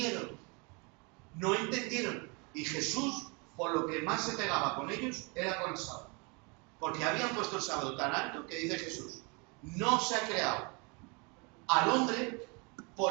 no entendieron. Y Jesús, por lo que más se pegaba con ellos, era con el sábado. Porque habían puesto el sábado tan alto que dice Jesús, no se ha creado al hombre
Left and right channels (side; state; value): left; quieter; 31.1 dB